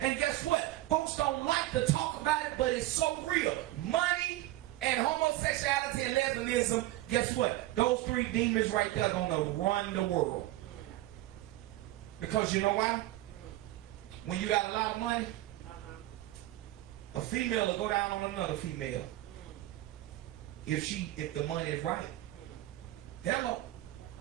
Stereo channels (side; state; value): left; quieter; 16.4 dB